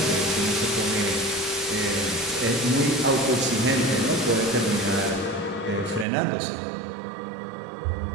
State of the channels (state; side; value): drops out; left; at 6.1 s